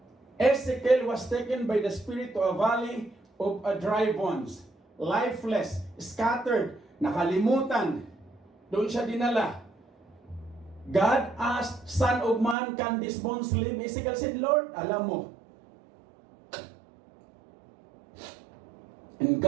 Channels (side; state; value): left; drops out; at 12.6 s